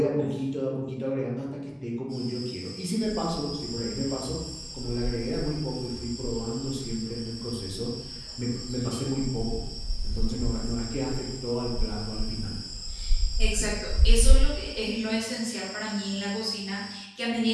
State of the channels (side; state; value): both; identical; correlation 1.00